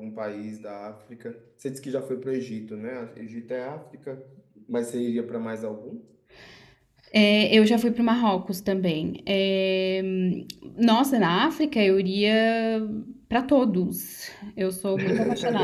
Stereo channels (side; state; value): both; identical; correlation 1.00